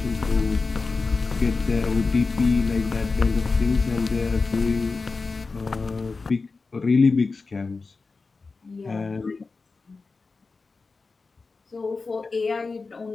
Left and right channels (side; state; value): right; quieter; 4.1 dB